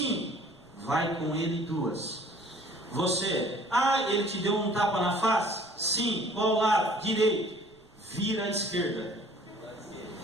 vai com ele 2. Você: ah, ele te deu um tapa na face? Sim, qual lado? Direito. Vira à esquerda.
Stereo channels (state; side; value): noise; right; rumble, 29 dB below the sound